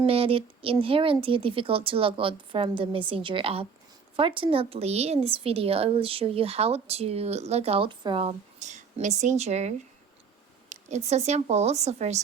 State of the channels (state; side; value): quieter; left; 5.9 dB